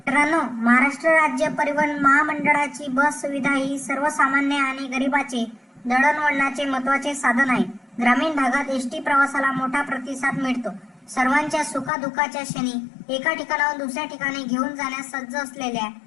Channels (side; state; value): right; drops out; at 11.9 s